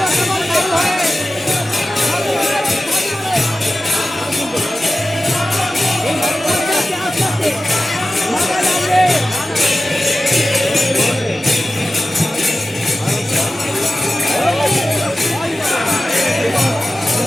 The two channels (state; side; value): normal; both; correlation 0.95